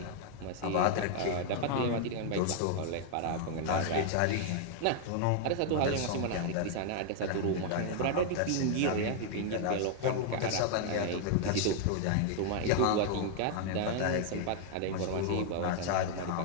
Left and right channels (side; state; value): both; different; correlation 0.00